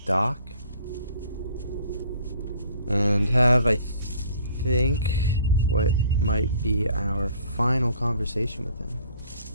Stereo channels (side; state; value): both; inverted; correlation -0.55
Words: Doc. And have, I think, what might be our final conversation with him.